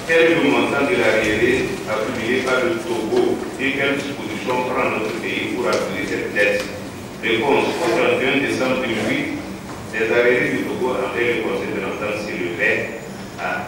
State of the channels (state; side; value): identical; both; correlation 1.00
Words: Quel est le montant de l'arriéré accumulé par le Togo et quelles dispositions prend notre pays pour appuyer cette dette? Réponse. Au 31 décembre 2008, les arriérés du Togo envers le Conseil de l'entente s'élevaient à